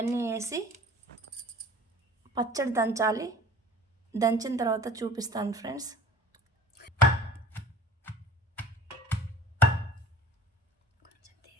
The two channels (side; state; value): both; normal; correlation 0.46